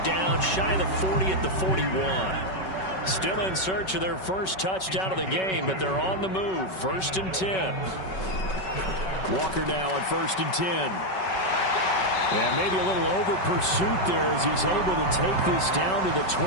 down shy of the 40 at the 41. Still in search of their first touchdown of the game, but they're on the move. 1st and 10. Walker now on 1st and 10. And maybe a little over pursuit there as he's able to take this down to the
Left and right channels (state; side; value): late; right; 5.3 ms